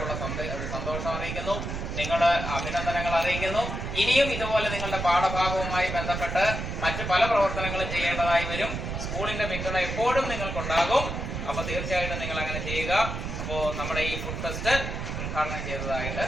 ഉള്ള സന്തോഷം അറിയിക്കുന്നു. നിങ്ങളുടെ അഭിനന്ദനങ്ങൾ അറിയിക്കുന്നു. ഇനിയും ഇതുപോലെ നിങ്ങളുടെ പാഠഭാഗവുമായി ബന്ധപ്പെട്ട് മറ്റു പല പ്രവർത്തനങ്ങളും ചെയ്യേണ്ടതായി വരും. സ്കൂളിന്റെ പിന്തുണ എപ്പോഴും നിങ്ങൾക്കുണ്ടാകും. അപ്പൊ തീർച്ചയായിട്ടും നിങ്ങൾ അങ്ങനെ ചെയ്യുക. അപ്പോൾ നമ്മുടെ ഈ ഫുഡ് ഫെസ്റ്റ് ഉദ്ഘാടനം ചെയ്തതായിട്ട്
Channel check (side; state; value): right; noise; rumble, 4 dB below the sound